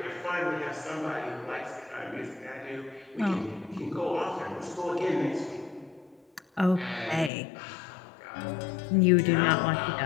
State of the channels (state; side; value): drops out; right; at 7.3 s